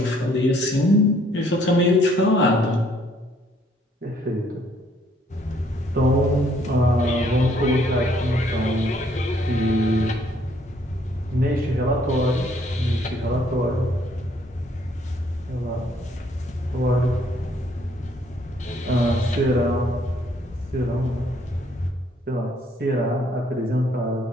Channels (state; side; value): normal; both; correlation 0.65